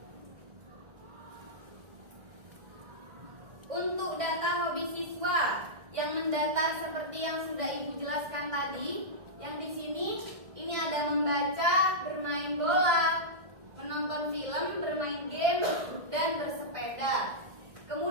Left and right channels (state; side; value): late; left; 1.6 ms